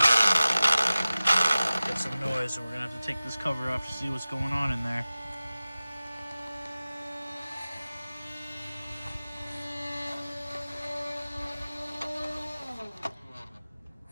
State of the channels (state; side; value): inverted; both; correlation -0.97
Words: got some noise, and we're gonna have to take this cover off to see what's going on in there.